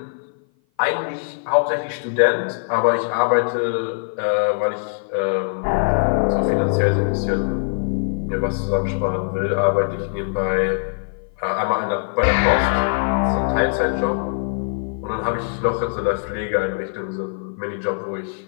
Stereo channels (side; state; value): right; silent; 56 dB below the other